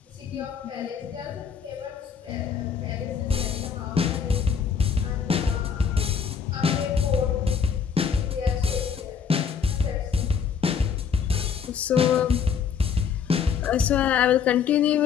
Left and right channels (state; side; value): quieter; right; 6.9 dB